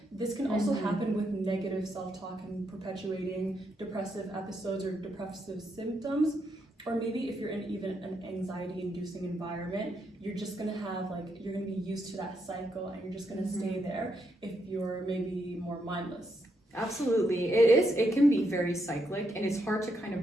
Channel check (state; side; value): normal; both; correlation 0.79